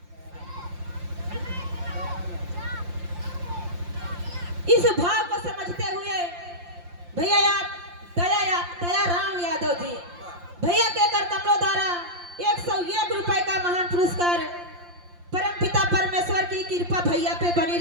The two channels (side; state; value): left; late; 5.7 ms